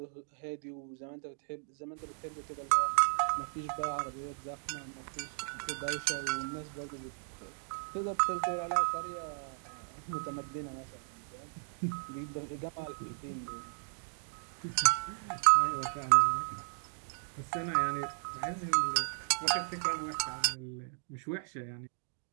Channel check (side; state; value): left; silent; digital silence